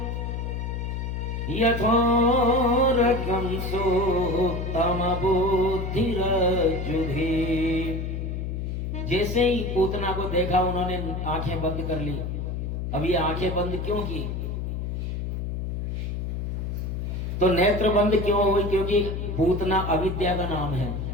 यथोरगं सुप्तमबुद्धिरज्जुधि। जैसे ही पूतना को देखा उन्होंने आंखें बंद कर ली। अब ये आंखें बंद क्यों की? तो नेत्र बंद क्यों हुई? क्योंकि पूतना अविद्या का नाम है,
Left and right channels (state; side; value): noise; left; hum, 3 dB below the sound